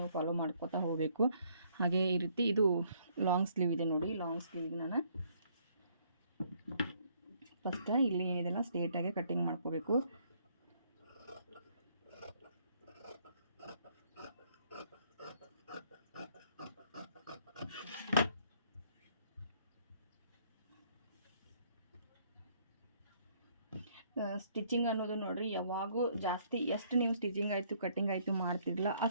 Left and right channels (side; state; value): both; inverted; correlation -0.65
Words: ಫಾಲೋ ಮಾಡ್ಕೋತಾ ಹೋಗಬೇಕು. ಹಾಗೆ ಈ ರೀತಿ ಇದು ಲಾಂಗ್ ಸ್ಲೀವ್ ಇದೆ ನೋಡಿ. ಲಾಂಗ್ ಸ್ಲೀವ್ಗೆ ನಾನು ಫಸ್ಟ್ ಇಲ್ಲಿ ಏನಿದೆಲ್ಲ ಸ್ಟ್ರೇಟಾಗಿ ಕಟ್ಟಿಂಗ್ ಮಾಡ್ಕೋಬೇಕು. ಸ್ಟಿಚಿಂಗ್ ಅನ್ನೋದು ನೋಡಿರಿ, ಯಾವಾಗೂ ಜಾಸ್ತಿ ಎಷ್ಟು ನೀವು ಸ್ಟಿಚಿಂಗ್ ಆಯಿತು ಕಟ್ಟಿಂಗ್ ಆಯಿತು ಮಾಡ್ತಿರಲ್ಲ